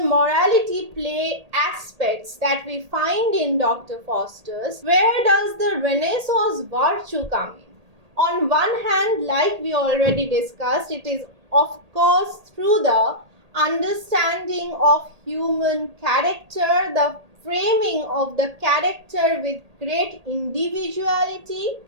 play aspects that we find in Dr. Faustus? Where does the Renaissance virtue come in? On one hand, like we already discussed, it is of course through the understanding of human character, the framing of the character with great individuality.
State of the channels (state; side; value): late; left; 1.8 ms